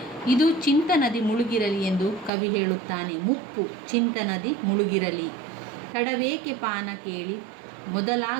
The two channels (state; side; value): drops out; left; at 2.3 s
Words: ಇದು ಚಿಂತನದಿ ಮುಳುಗಿರಲಿ ಎಂದು ಕವಿ ಹೇಳುತ್ತಾನೆ. ಮುಪ್ಪು ಚಿಂತನದಿ ಮುಳುಗಿರಲಿ. ತಡವೇಕೆ ಪಾನ ಕೇಳಿ